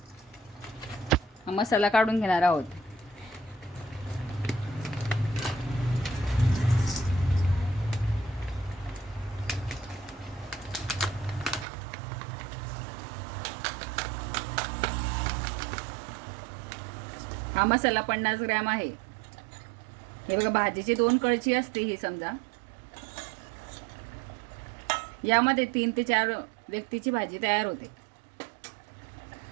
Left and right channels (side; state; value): left; drops out; at 11.7 s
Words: मसाला काढून घेणार आहोत। हा मसाला 50 ग्रॅम आहे। हे बघा, भाजीची 2 कळची असते ही समजा। यामध्ये 3 ते 4 व्यक्तीची भाजी तयार होते।